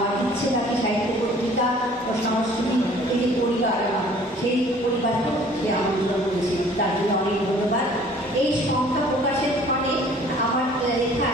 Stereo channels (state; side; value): normal; both; correlation 0.53